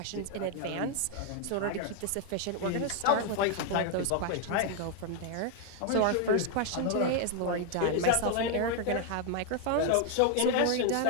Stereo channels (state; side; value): different; both; correlation 0.01